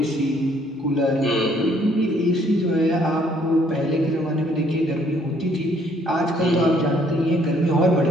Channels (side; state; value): both; normal; correlation 0.64